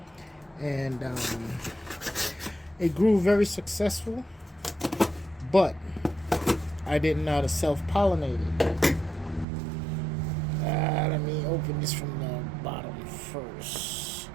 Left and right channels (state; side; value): drops out; left; at 9.5 s